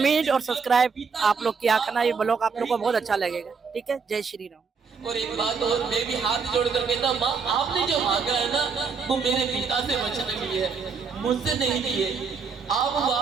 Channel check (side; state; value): left; quieter; 5.5 dB